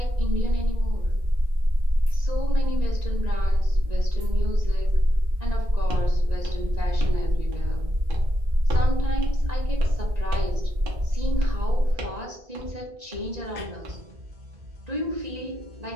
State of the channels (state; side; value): late; left; 1.9 ms